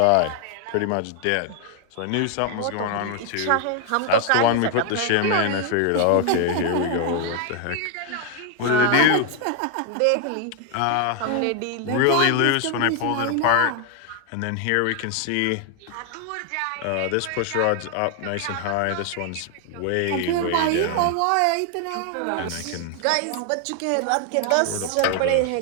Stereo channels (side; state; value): both; different; correlation 0.00